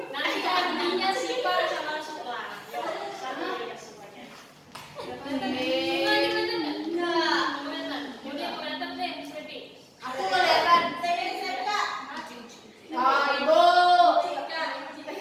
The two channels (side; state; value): both; identical; correlation 1.00